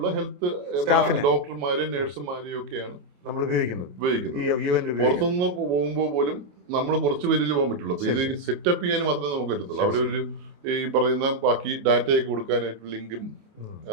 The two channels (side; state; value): left; late; 28 ms